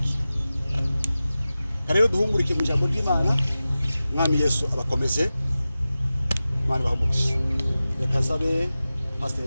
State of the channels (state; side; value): inverted; both; correlation -0.95